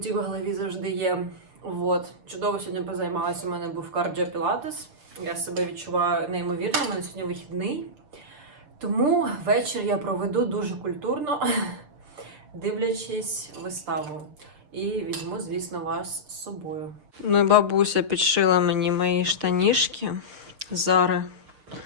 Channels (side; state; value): left; late; 6.7 ms